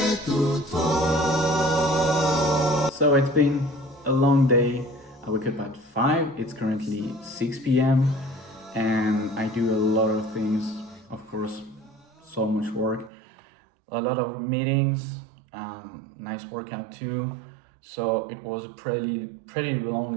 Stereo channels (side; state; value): left; drops out; at 13.1 s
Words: So it's been a long day. I wake up at 5, it's currently 6 p.m. and I do a lot of things, of course, so much work, a lot of meetings, nice workout too. So it was a pretty long